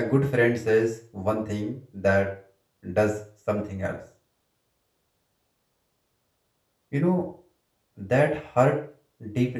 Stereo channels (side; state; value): both; identical; correlation 1.00